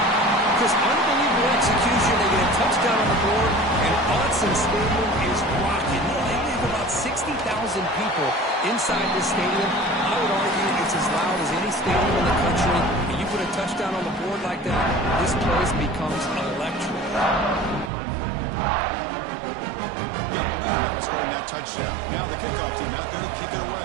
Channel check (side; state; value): left; drops out; at 17.9 s